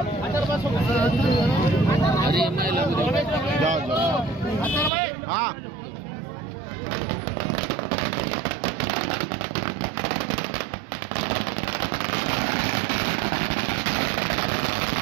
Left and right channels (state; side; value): drops out; left; at 4.9 s